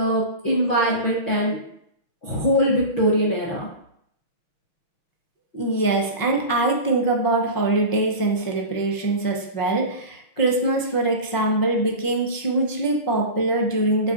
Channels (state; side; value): late; right; 6.2 ms